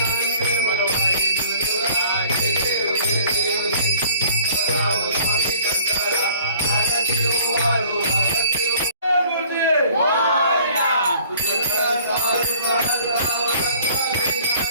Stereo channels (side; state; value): both; inverted; correlation -0.54